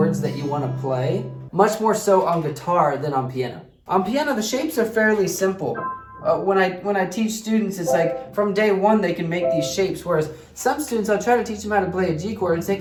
that you want to play, much more so on guitar than on piano. On piano, the shapes are fairly simple. When I teach students, it's like from day 1 they can make these shapes, whereas some students, I'll try to teach them how to play a G chord and take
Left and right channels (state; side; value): identical; both; correlation 1.00